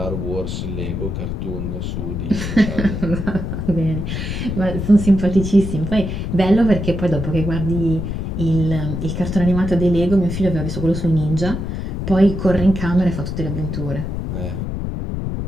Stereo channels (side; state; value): left; noise; rumble, 4 dB below the sound